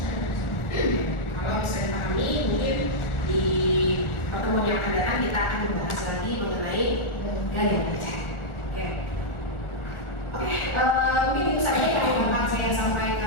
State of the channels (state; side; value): late; right; 1.4 ms